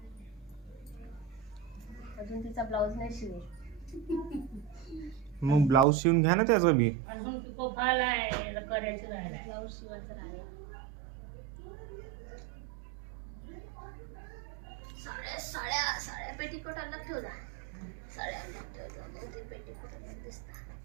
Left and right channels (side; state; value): left; drops out; at 5.9 s